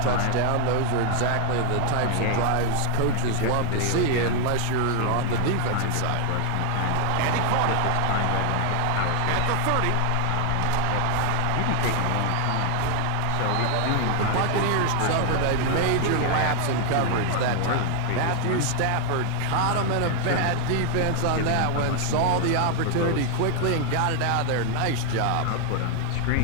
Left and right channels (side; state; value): both; different; correlation 0.00